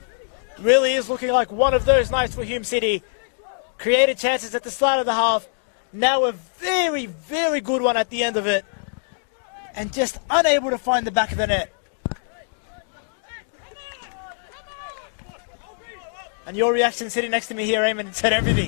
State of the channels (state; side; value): silent; right; digital silence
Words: Really is looking like one of those nights for Hume City. Created chances at the start of the half. Now a very, very good one at the end of it. And just unable to find the back of the net. And your reaction sitting next to me here, Eamon, said